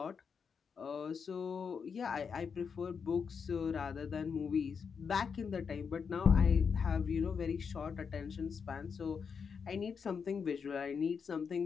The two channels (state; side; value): quieter; right; 6.2 dB